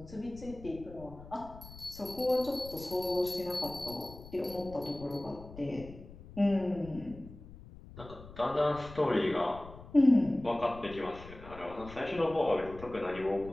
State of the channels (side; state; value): left; noise; rumble, 16 dB below the sound